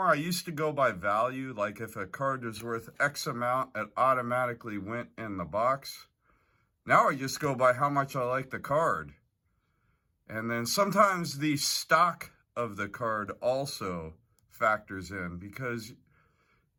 I used to go by value. Like if a card was worth X amount, it automatically went in the box. Now I just go by how much I like the card. And then sometimes the stock of the card also factors in, because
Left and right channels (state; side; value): identical; both; correlation 1.00